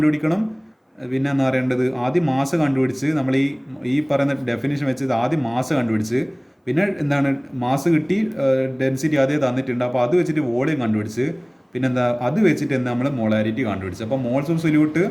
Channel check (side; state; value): both; identical; correlation 1.00